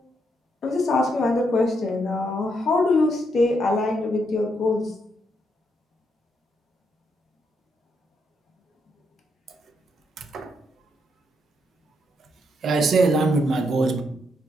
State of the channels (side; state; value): both; normal; correlation 0.78